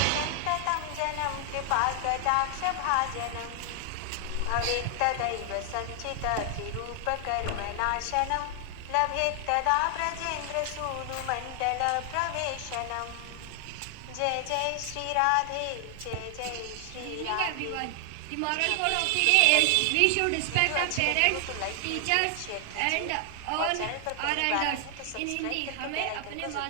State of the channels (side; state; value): both; different; correlation 0.00